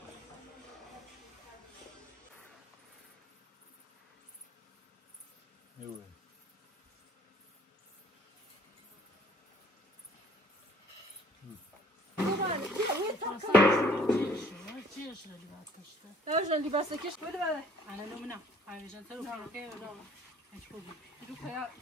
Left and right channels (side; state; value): both; normal; correlation 0.57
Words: اجا لباسه كيش ولا بقى انا لو منع عشان تروح كده ولا هتشوفي يروح يا